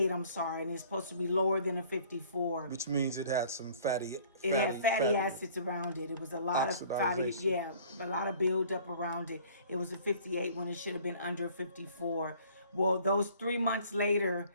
I'm sorry, and it's supposed to be lower than a 54. Which means it had some fatty acids around it. It was a lot of a lot of buildup around it. It was a 58 when it should have been under 54. Well, those 3 months later,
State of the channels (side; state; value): both; inverted; correlation -0.52